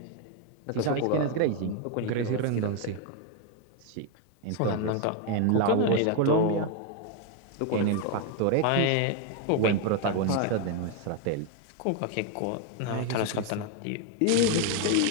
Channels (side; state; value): both; different; correlation 0.01